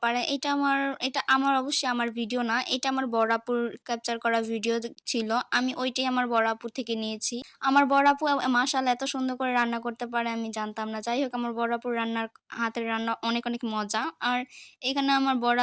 এটা আমার অবশ্যই আমার ভিডিও না। এটা আমার বড় আপুর ক্যাপচার করা ভিডিও ছিল। আমি ওইটাই আমার বড় আপুর থেকে নিয়েছি। আমার বড় আপু মাশাআল্লাহ এত সুন্দর করে রান্না করতে পারে আমি জানতাম না। যাই হোক আমার বড় আপুর হাতের রান্না অনেক, অনেক মজা। আর এখানে আমার বড়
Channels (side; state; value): both; identical; correlation 1.00